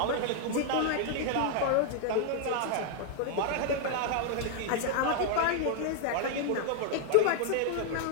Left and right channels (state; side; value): different; both; correlation 0.00